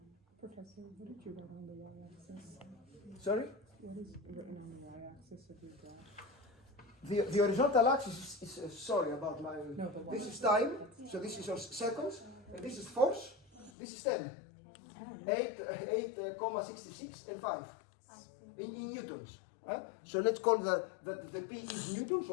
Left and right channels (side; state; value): right; drops out; at 13.7 s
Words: Professor, what did you write on the y-axis? Sorry? What is written on the y-axis of your graph? The horizontal axis is sorry about my. No, but This is time, so this is your seconds, and this is force. This is 10. 8,66 and 5 in newtons. So let's call that the P is newtons